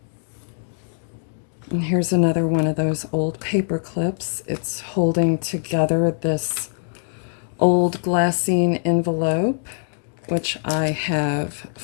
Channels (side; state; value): right; silent; digital silence